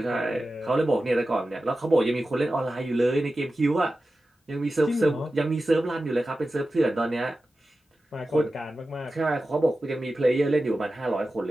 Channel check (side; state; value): both; normal; correlation 0.94